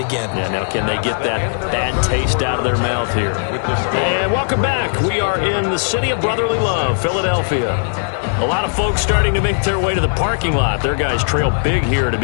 Yeah, now can they get that bad taste out of their mouth here? And welcome back. We are in the city of brotherly love, Philadelphia. A lot of folks starting to make their way to the parking lot. Their guys trail big here to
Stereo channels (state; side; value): silent; right; digital silence